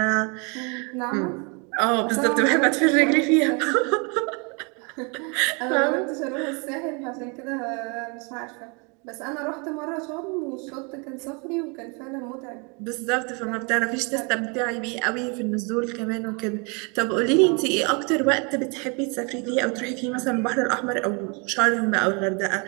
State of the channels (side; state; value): left; quieter; 32.9 dB